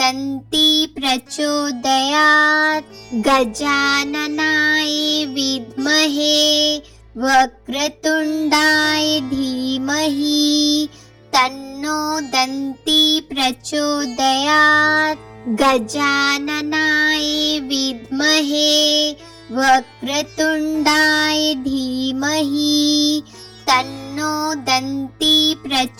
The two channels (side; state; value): both; identical; correlation 1.00